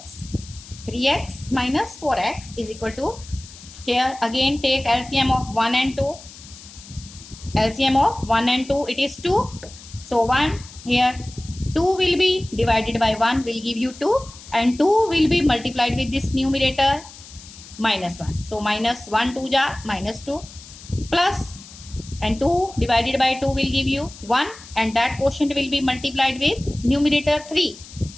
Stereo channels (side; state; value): left; noise; hiss, 18 dB below the sound